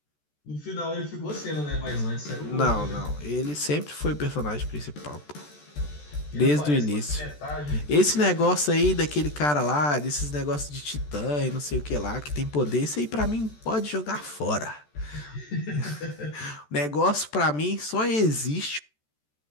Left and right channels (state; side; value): late; right; 14 ms